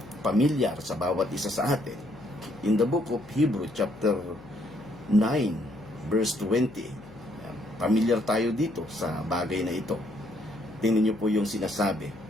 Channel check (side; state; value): left; noise; hum, 21 dB below the sound